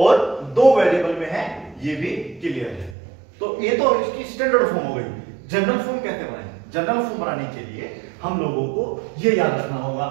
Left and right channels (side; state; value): left; drops out; at 3.0 s